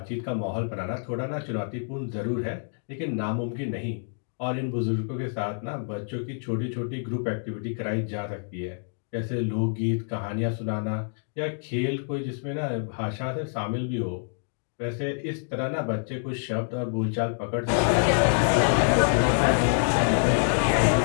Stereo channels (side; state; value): right; silent; digital silence